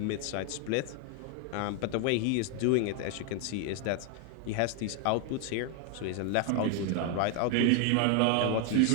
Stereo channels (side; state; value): both; different; correlation 0.01